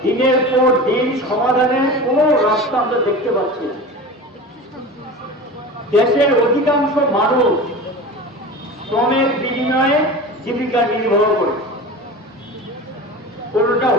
দিনের পর দিন সমাধানের কোনো রাস্তা আমরা দেখতে পাচ্ছি না। দেশের অধিকাংশ মানুষ শ্রমের বিনিময়ে জীবিকা নির্বাহ করে। কোনটা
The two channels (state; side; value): normal; both; correlation 0.32